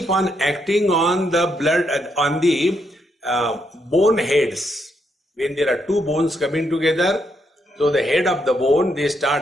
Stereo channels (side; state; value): both; normal; correlation 0.77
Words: on acting on the blood, on the bone heads. When there are two bones coming together, so the head of the bone, they